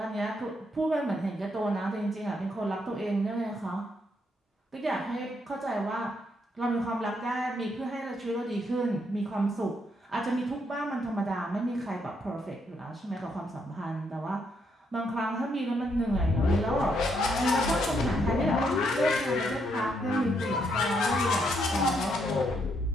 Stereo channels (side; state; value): both; normal; correlation 0.75